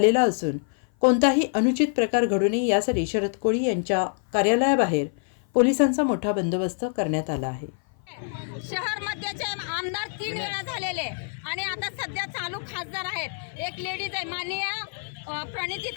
असून कोणताही अनुचित प्रकार घडू नये यासाठी शरद कोळी यांच्या कार्यालयाबाहेर पोलिसांचा मोठा बंदोबस्त करण्यात आला आहे। शहर मध्यचे आमदार 3 वेळा झालेले आणि आता सध्या चालू खासदार आहेत। एक लेडीज आहे माननीय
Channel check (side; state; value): right; silent; 56 dB below the other